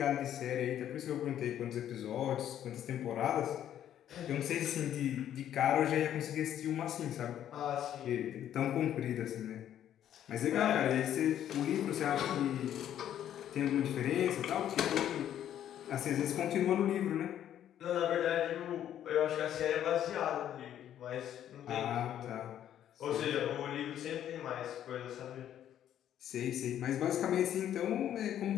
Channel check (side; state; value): right; quieter; 10.8 dB